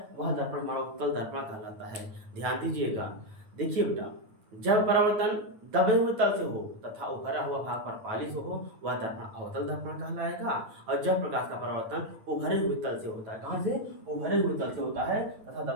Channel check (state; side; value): late; left; 9.2 ms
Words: वह दर्पण हमारा उत्तल दर्पण कहलाता है। ध्यान दीजिएगा, देखिए बेटा, जब परावर्तन दबे हुए तल से हो तथा उभरा हुआ भाग पर पालिश हो, वह दर्पण अवतल दर्पण कहलाएगा। और जब प्रकाश का परावर्तन उभरे हुए तल से होता है, कहाँ से, उभरे हुए तल से होता है तथा